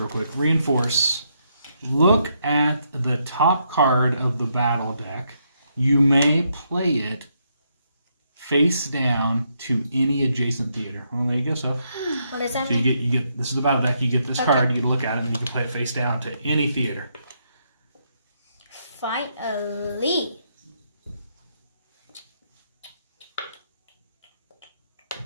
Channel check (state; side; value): inverted; both; correlation -0.77